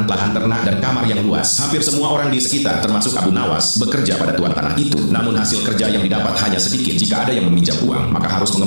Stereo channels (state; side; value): inverted; both; correlation -1.00